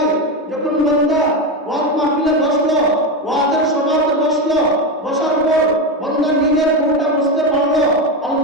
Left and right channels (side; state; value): both; normal; correlation 0.14